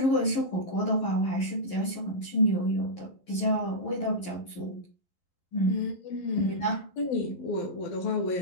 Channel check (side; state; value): right; late; 11 ms